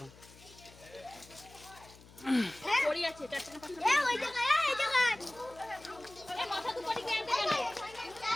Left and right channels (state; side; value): noise; left; hum, 22 dB below the sound